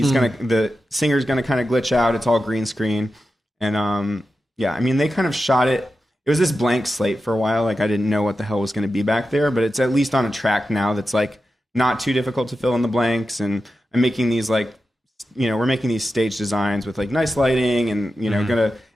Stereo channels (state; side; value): normal; both; correlation 0.91